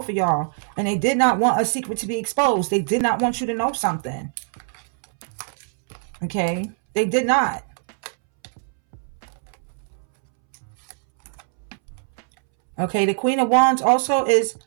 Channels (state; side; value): silent; left; 64 dB below the other